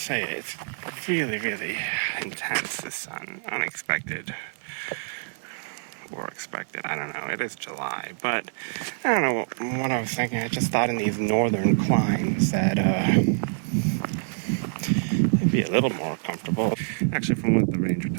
say, it's really, really intense, the sun. Unexpected. Or expected, I don't know. It is July, but I don't know what I was thinking. I just thought in these northern climes that it'd be a little more comfortable. Actually, from what the ranger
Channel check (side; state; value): left; silent; digital silence